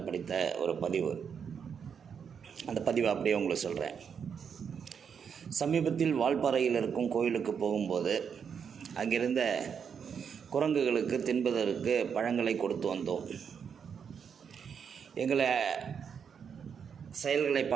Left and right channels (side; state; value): left; quieter; 7.0 dB